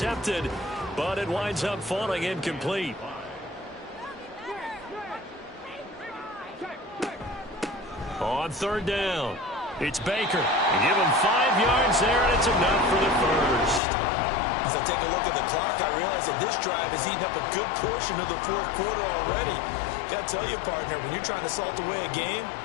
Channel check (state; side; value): drops out; right; at 13.8 s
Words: but it winds up falling incomplete. On 3rd down, it's Baker. Give him 5 yards there, and it's enough for the first. As I take a look at the clock, I realize that this drive has eaten up a good portion of the 4th quarter already. Got to tell you, partner, when you're trying to salt away a game,